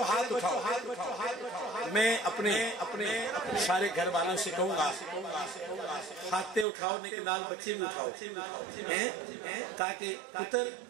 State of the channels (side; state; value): left; drops out; at 6.7 s